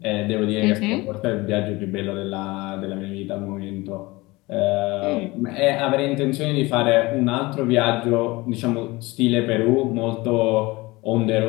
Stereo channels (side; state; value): right; quieter; 22.0 dB